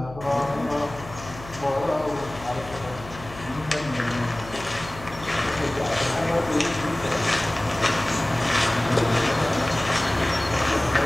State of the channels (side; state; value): left; noise; hum, 15 dB below the sound